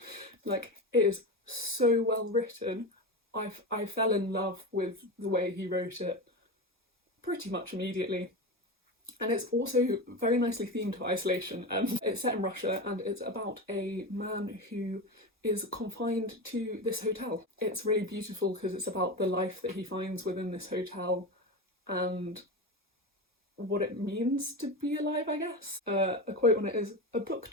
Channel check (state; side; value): normal; both; correlation 0.21